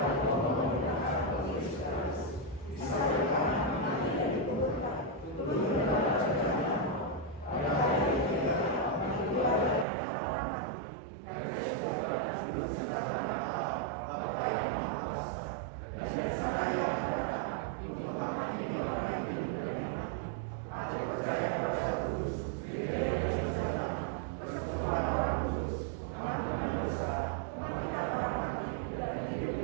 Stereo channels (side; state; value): left; drops out; at 9.9 s